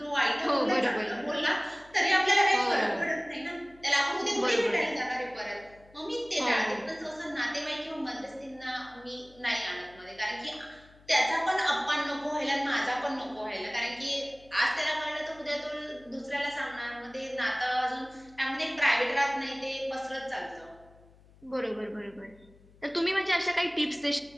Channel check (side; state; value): left; noise; hum, 26 dB below the sound